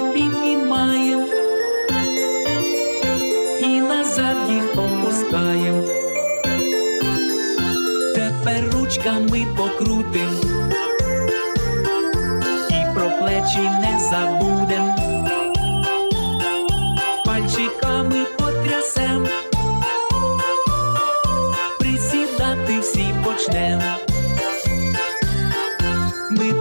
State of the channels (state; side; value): inverted; both; correlation -1.00